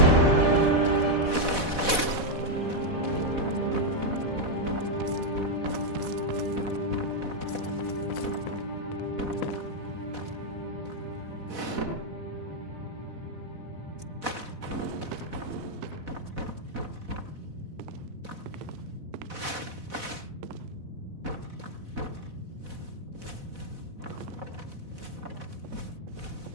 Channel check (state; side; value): late; left; 4.1 ms